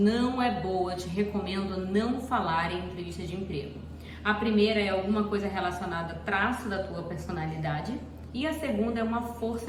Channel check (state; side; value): identical; both; correlation 1.00